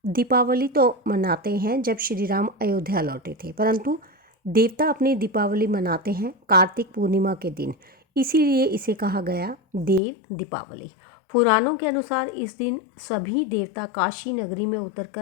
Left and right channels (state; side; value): drops out; right; at 10.0 s